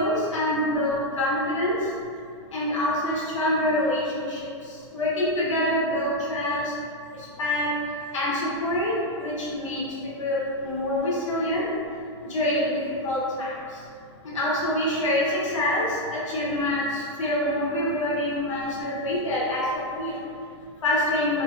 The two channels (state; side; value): normal; both; correlation 0.03